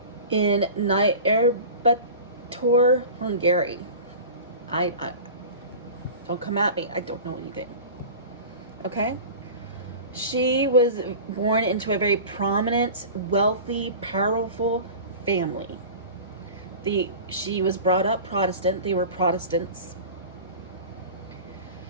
In Nyírbátor, Hungary. I don't come at me. I don't know anything. Okay? She was born into a very prominent, wealthy, powerful family. She was brought up Protestant. They were Protestants.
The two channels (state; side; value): inverted; both; correlation -0.35